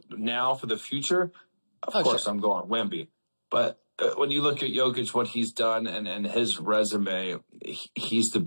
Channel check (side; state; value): both; inverted; correlation -1.00